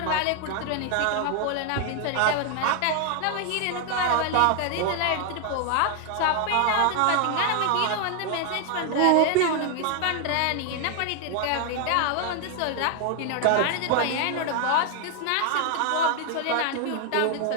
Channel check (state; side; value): different; both; correlation 0.00